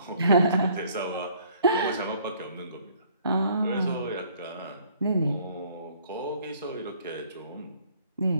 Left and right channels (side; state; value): both; inverted; correlation -0.59